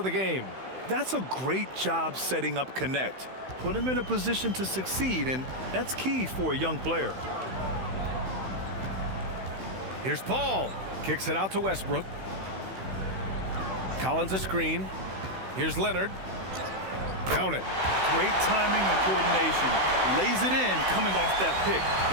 the game. That's a great job setting up Connect. Put him in a position to succeed, and that's key for a young player. Here's Paul. Kicks it out to Westbrook. Collins a screen. Here's Leonard. Count it. Great timing and coordination. Lays it in coming off that pick.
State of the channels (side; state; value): left; late; 16 ms